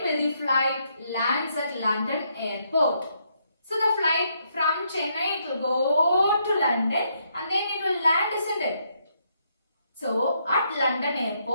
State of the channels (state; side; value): inverted; both; correlation -0.75